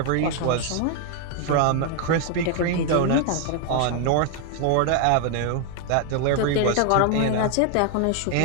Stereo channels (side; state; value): both; different; correlation 0.00